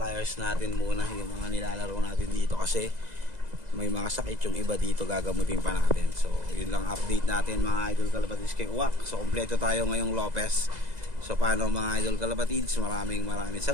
natin muna, yung mga nilalaro natin dito kasi may mga sakit yung iba dito, gagamutin pa natin. So yun lang update natin mga idol kalapatids kay Uwak. So kompleto tayo ngayong Lopez. So paano mga idol kalapatids, maraming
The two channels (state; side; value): late; left; 2.0 ms